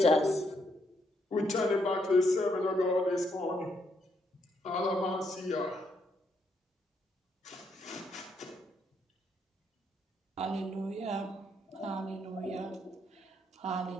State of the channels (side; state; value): both; normal; correlation 0.75